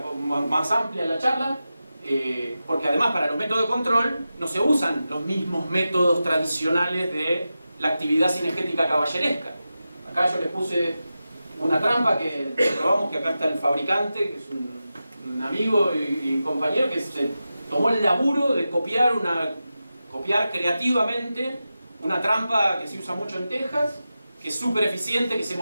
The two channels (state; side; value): inverted; both; correlation -0.92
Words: más amplia la charla, porque además para los métodos de control no se usan los mismos métodos tradicionales de la actividad cinegética caballeresca. Acá yo les puse una trampa que probamos, que acá está el fabricante, que es un amigo y compañero que se tomó el laburo de copiar creativamente una trampa que se usa mucho en Texas, que es súper eficiente, que se